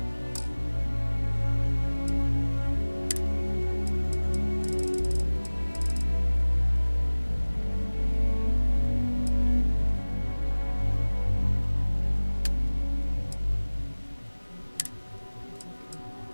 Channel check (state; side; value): inverted; both; correlation -1.00